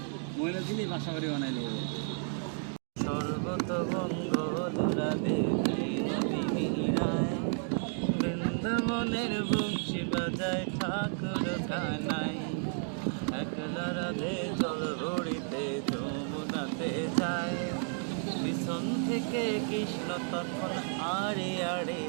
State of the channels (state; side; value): silent; left; 56 dB below the other